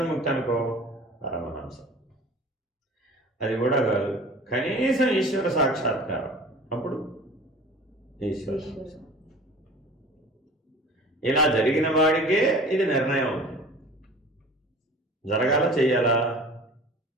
అనుకో, పరమహంస. అది కూడా కాదు, కనీసం ఈశ్వర సాక్షాత్కారం, అప్పుడు ఈశ్వర హంస. ఇలా జరిగిన వాడికే ఇది నిర్ణయం అవుతుంది. జరగాల చెయ్యాలా?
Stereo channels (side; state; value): both; normal; correlation 0.43